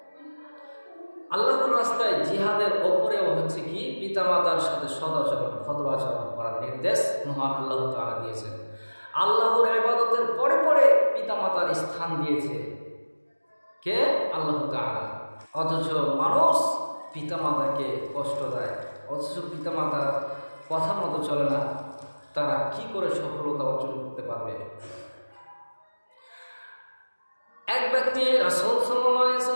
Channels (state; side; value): inverted; both; correlation -1.00